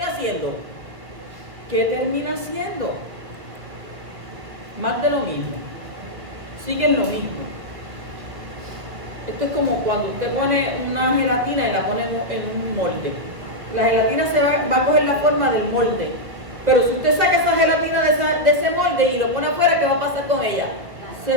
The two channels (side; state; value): left; late; 2.0 ms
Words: haciendo? ¿Qué termina haciendo? Más de lo mismo. Siguen lo mismo. Esto es como cuando usted pone una gelatina y la pone en un molde. La gelatina va a coger la forma del molde. Pero si usted saca esa gelatina de ese molde y lo pone afuera, ¿qué va a pasar con ella? Se